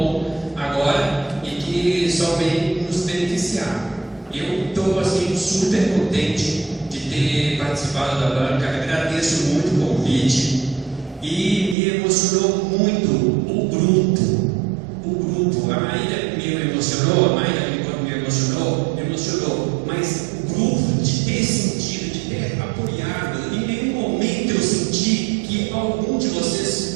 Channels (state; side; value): drops out; left; at 11.8 s